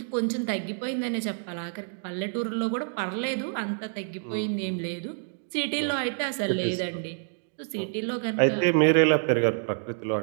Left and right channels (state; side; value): silent; left; digital silence